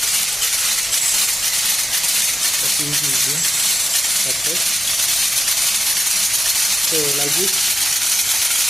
the piece is being cutted. So like this,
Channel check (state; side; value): normal; both; correlation 0.92